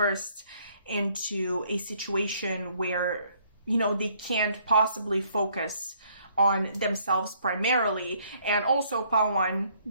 into a situation where they can't possibly focus on themselves primarily. And also, Pawan,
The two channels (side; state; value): both; inverted; correlation -0.65